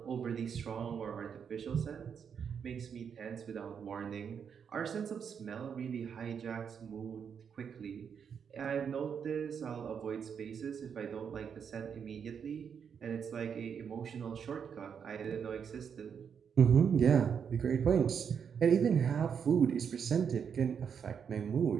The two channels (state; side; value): quieter; left; 7.2 dB